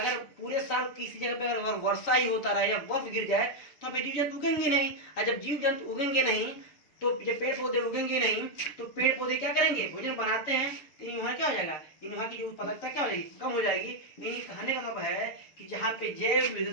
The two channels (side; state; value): right; late; 6.9 ms